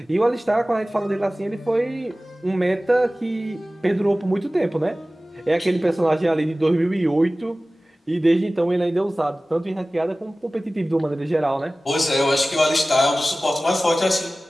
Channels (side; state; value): both; normal; correlation 0.97